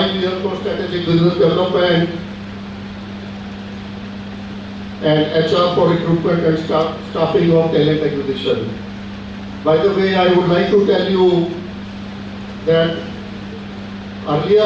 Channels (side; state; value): both; identical; correlation 1.00